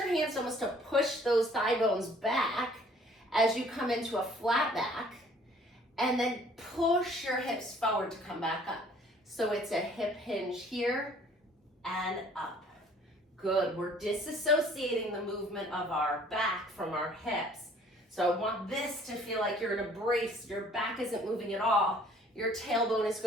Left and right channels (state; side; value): normal; both; correlation 0.56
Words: hands almost to push those thigh bones back as you come into a flat back, and then push your hips forward to come back up. So it's a hip hinge here and up. Good, we're disassociating the movement of our back from our hips. So I want this to feel like you're in a brace. Your back isn't moving at all. Your tailbone is